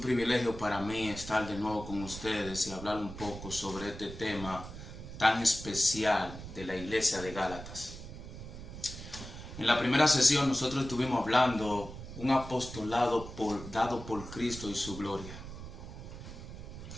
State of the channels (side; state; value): right; noise; rumble, 11 dB below the sound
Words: para mí estar de nuevo con ustedes y hablar un poco sobre este tema tan especial de la iglesia de Gálatas. En la primera sesión nosotros estuvimos hablando un apostolado dado por Cristo y su gloria.